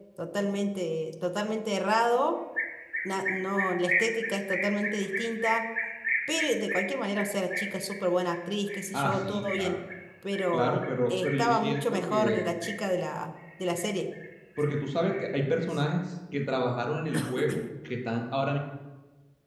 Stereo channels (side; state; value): both; identical; correlation 1.00